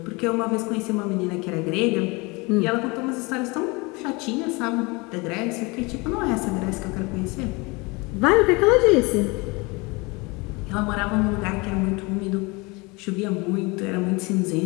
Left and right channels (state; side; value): quieter; right; 26.4 dB